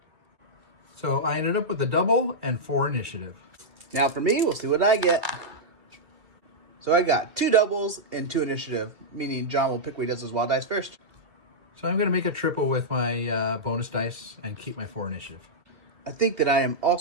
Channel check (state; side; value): late; left; 2.5 ms